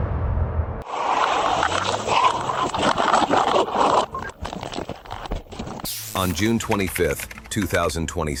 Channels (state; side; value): identical; both; correlation 1.00